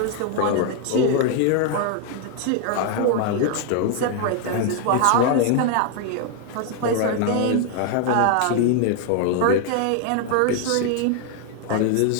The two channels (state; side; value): different; both; correlation 0.00